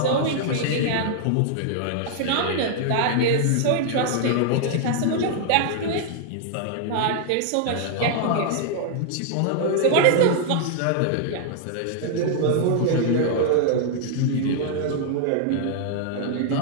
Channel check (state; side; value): different; both; correlation 0.00